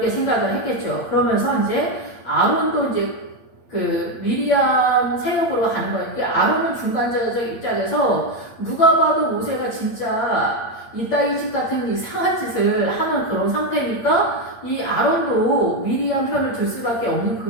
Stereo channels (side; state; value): right; late; 8.7 ms